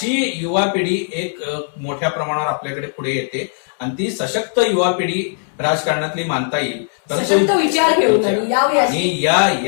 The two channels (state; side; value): silent; right; 67 dB below the other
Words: युवा पिढी एक मोठ्या प्रमाणावर आपल्याकडे पुढे येते आणि ती सशक्त युवा पिढी राजकारणातली मानता येईल. सशक्त विचार घेऊन आणि